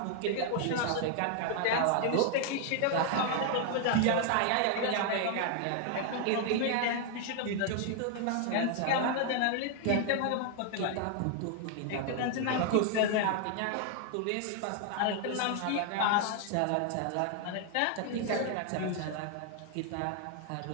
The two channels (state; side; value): different; both; correlation 0.00